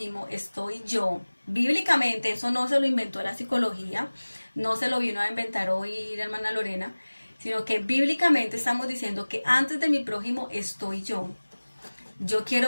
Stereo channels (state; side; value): inverted; both; correlation -1.00